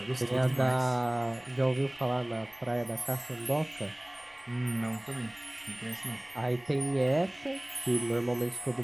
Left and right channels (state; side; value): noise; left; rumble, 28 dB below the sound